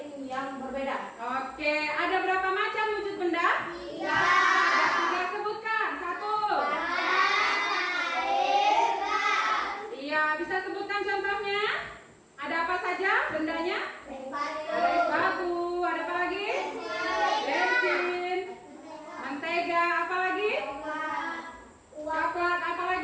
yang berbeda. Oke, ada berapa macam wujud benda? 3. Ada 3, sebutkan. 1. Iya, bisa sebutkan contohnya? Ada apa saja bendanya? Ada es batu, ada apa lagi? Bensin, mentega, apa lagi? Coklat, apa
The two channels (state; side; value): identical; both; correlation 1.00